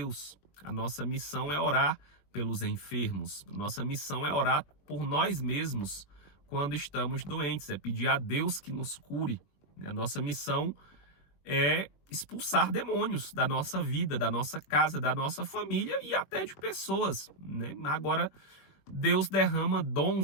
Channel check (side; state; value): right; late; 21 ms